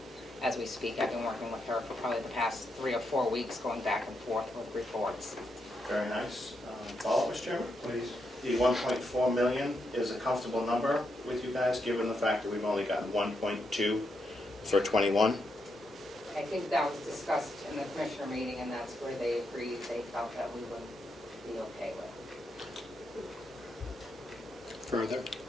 As we speak, I've been working with her for probably the past 3 or 4 weeks, going back and forth with reports. Very nice. Follow-up, Mr. Chairman? Please. The 1.4 million is a comfortable number with you guys, given the fact that we've only gotten 1.2 for 21? I think that was discussed in the commissioner meeting, and that's where they agreed, they felt that we would be okay with. Further?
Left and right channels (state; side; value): normal; both; correlation 0.82